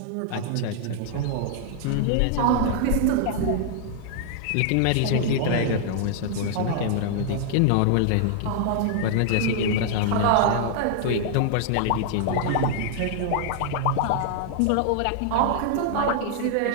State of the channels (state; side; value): different; both; correlation -0.01